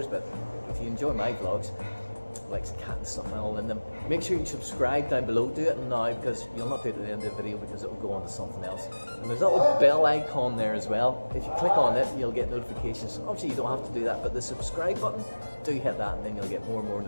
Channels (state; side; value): inverted; both; correlation -1.00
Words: but if you enjoy my vlogs, like cat and stuff and all in them, make sure you subscribe down below. Do it now, because you'll not do it at the end of the video, because it will go on to something else. And there's a little bell icon there as well. If you click on it, you'll get notifications. Obviously you don't have to do that, but the subscribe button, do hit that, and then you'll get more and more